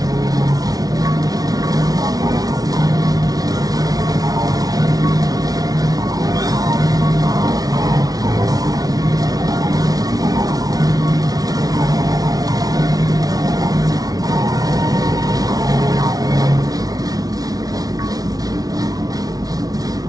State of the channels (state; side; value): late; left; 0.18 ms